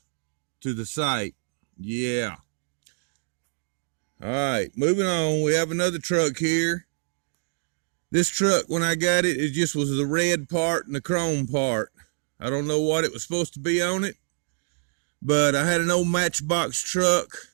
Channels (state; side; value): silent; left; digital silence